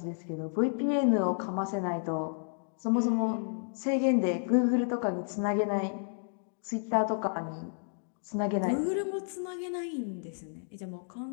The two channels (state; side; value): silent; right; digital silence